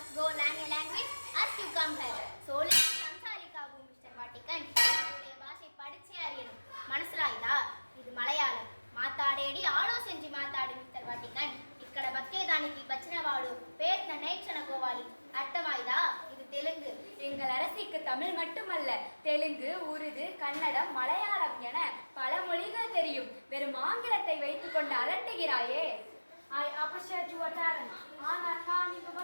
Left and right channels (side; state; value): both; inverted; correlation -1.00